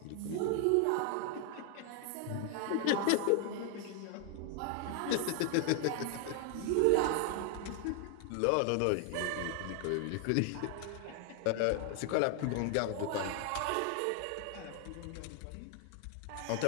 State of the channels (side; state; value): both; different; correlation 0.00